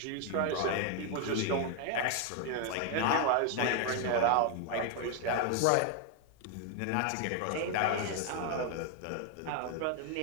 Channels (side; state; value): both; different; correlation 0.01